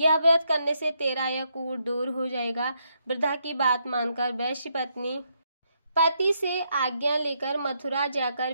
व्रत करने से तेरा यह कूट दूर हो जाएगा। वृद्धा की बात मानकर वैश्य पत्नी पति से आज्ञा लेकर मथुरा जाकर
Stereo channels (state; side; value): inverted; both; correlation -0.77